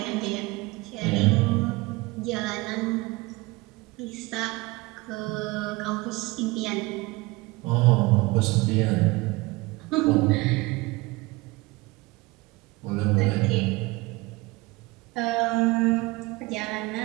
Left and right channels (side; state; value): left; quieter; 22.8 dB